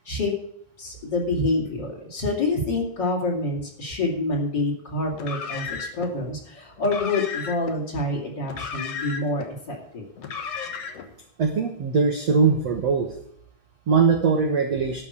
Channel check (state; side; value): late; left; 1.6 ms